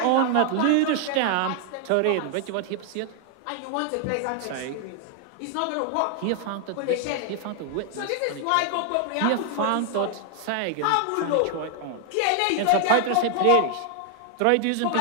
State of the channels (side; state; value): both; different; correlation 0.00